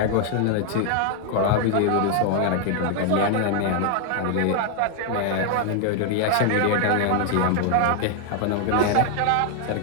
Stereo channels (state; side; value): different; both; correlation 0.00